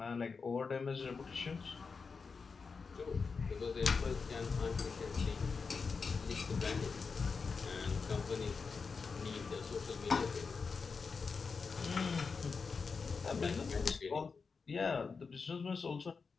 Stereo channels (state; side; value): quieter; right; 5.0 dB